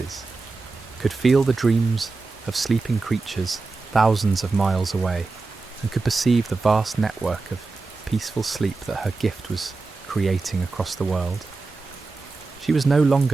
could feel the dreams of sleeping creatures thousands of miles away, and could perceive the vast network of peaceful sleep that her gift was creating across the world. She was no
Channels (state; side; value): quieter; left; 3.8 dB